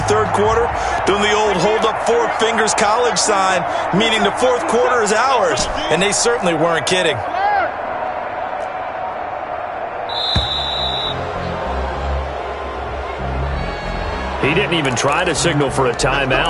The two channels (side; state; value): both; identical; correlation 1.00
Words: third quarter doing the old hold up 4 fingers college sign, meaning the fourth quarter is ours. And they certainly weren't kidding. He didn't even try to signal for a